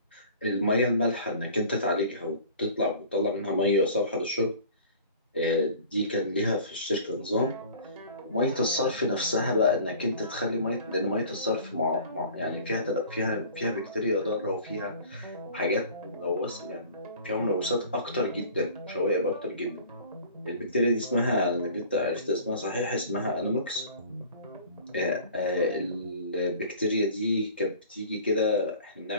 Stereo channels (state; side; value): inverted; both; correlation -0.45